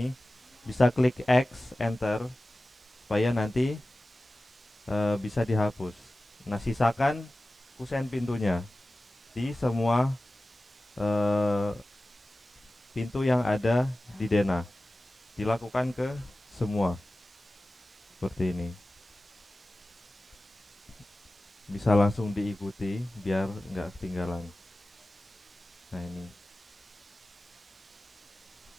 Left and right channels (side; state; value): both; normal; correlation 0.96